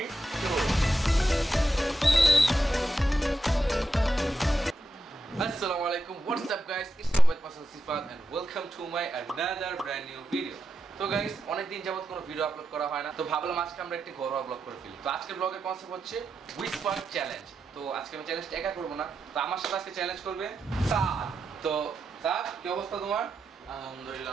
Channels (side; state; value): both; normal; correlation 0.86